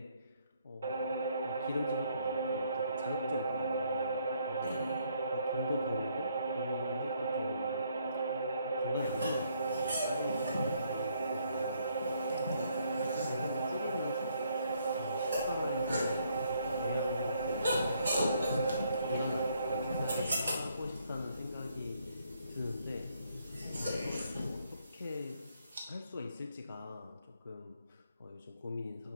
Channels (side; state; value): both; inverted; correlation -0.70